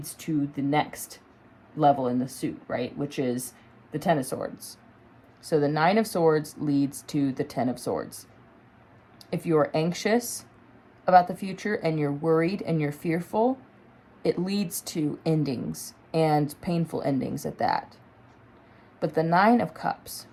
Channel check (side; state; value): both; identical; correlation 1.00